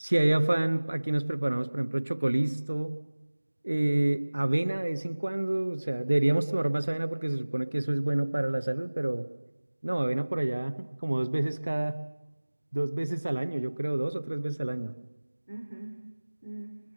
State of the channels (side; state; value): both; inverted; correlation -1.00